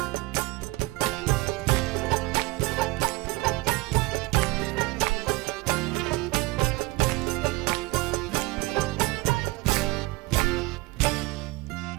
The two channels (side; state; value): left; quieter; 22.5 dB